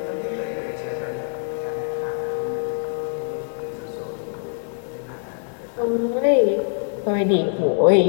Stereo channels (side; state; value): right; silent; digital silence